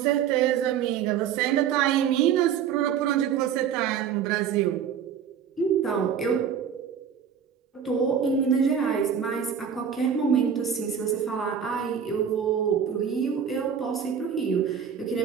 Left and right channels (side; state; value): left; quieter; 7.9 dB